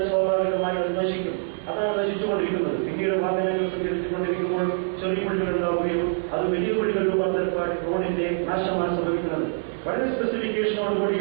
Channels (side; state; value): left; silent; 59 dB below the other